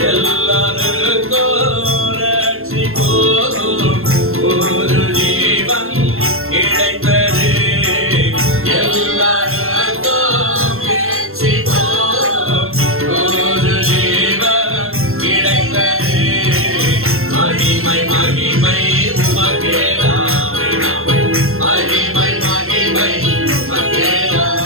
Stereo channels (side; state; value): left; late; 0.62 ms